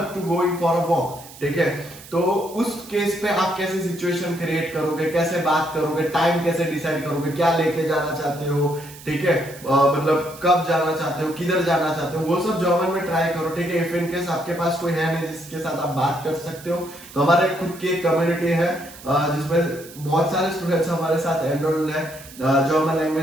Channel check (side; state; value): right; noise; hiss, 18 dB below the sound